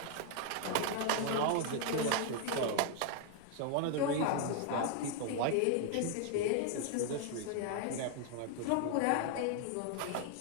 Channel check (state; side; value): different; both; correlation 0.00